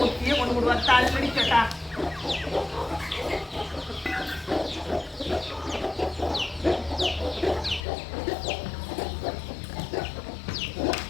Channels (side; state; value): right; drops out; at 7.8 s